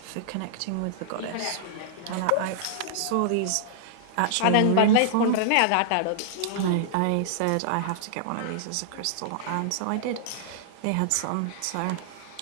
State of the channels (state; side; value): different; both; correlation -0.01